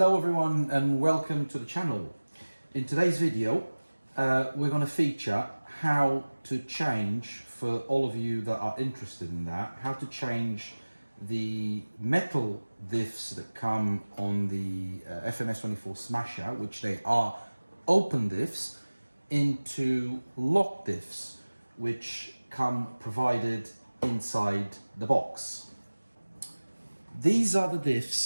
everyone and welcome to the channel. In today's video we're going to feature how to change, for all of you that are interested in that, how to change the metal diffs that come on the FMS24 Smasher, which they are open diffs, into lock diffs which come provided inside the box. These are the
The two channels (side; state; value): both; inverted; correlation -1.00